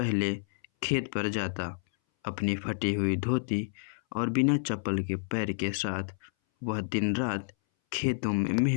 खेत पर जाता। अपनी फटी हुई धोती और बिना चप्पल के पैर के साथ वह दिन रात खेतों में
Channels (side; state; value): right; silent; 58 dB below the other